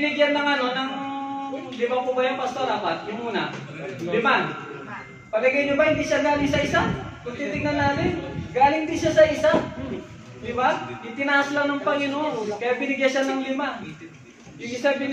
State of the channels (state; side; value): identical; both; correlation 1.00